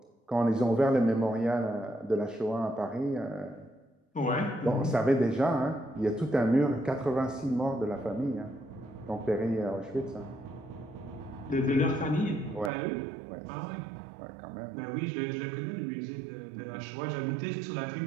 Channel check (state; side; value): drops out; left; at 12.7 s